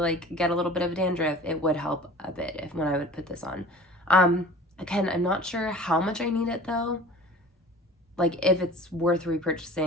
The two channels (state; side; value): normal; both; correlation 0.43